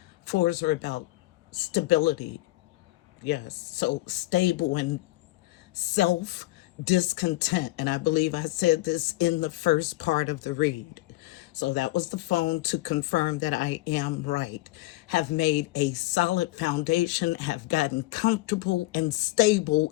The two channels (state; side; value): quieter; right; 19.3 dB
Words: Fours are about stability. Yes, so stable and self discontent. And I believe I said this in the first part of the read. So that was the phone to confirm that I am right. Have made a solid foundation, have gotten comfortable and